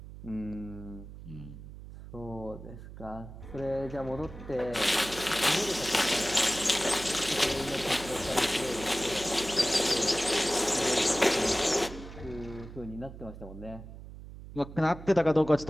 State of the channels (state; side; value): noise; right; hum, 14 dB below the sound